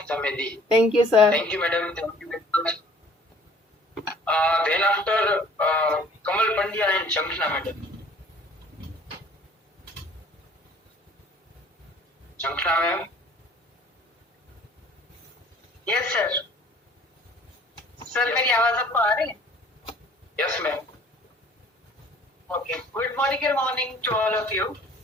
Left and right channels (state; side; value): normal; both; correlation 0.53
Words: हमें दी। Thank you sir. Thank you madam, thank you very much. Then after Kamal Pandya and Shankhana madam. Shankhana ma'am. Yes sir. Sir मेरी आवाज आपको आ रही है? Yes ma'am. Okay, good morning to all of you